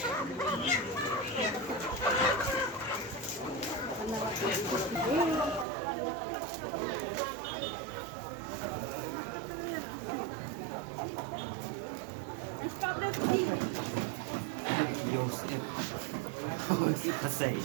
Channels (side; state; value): left; drops out; at 5.7 s